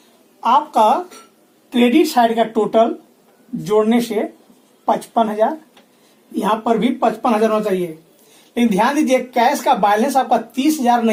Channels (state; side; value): identical; both; correlation 1.00